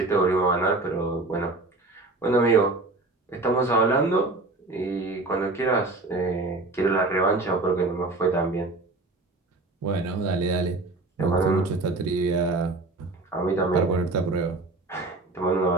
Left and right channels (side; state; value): left; quieter; 3.1 dB